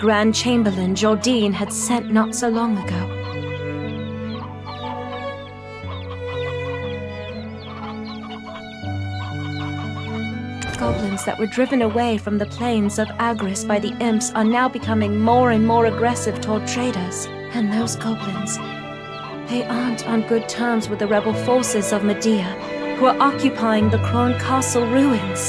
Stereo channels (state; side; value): identical; both; correlation 1.00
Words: Chamberlain, Jordine, had sent not so long ago. Goblins that were driven away from the plains of Agris by the imps are now becoming more and more aggressive toward traders. And those goblins, they aren't on good terms with the rebel forces of Medea, who are occupying the Kron Castle